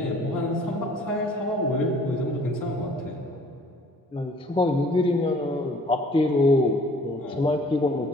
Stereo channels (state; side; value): normal; both; correlation 0.55